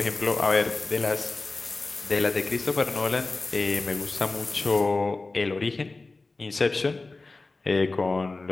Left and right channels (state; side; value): quieter; right; 3.5 dB